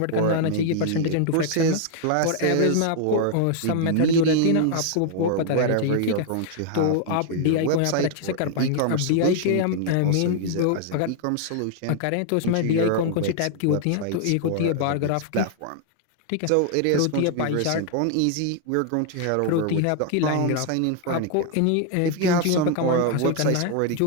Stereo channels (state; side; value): different; both; correlation 0.00